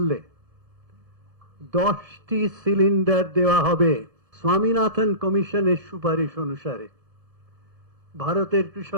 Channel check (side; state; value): left; late; 1.7 ms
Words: 10টি সিলিন্ডার দেওয়া হবে। স্বামীনাথন কমিশনের সুপারিশ অনুসারে ভারতের